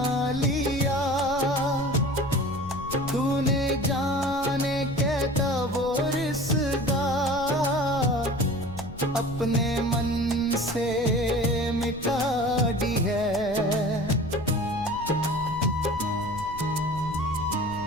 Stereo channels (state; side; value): noise; left; rumble, 14 dB below the sound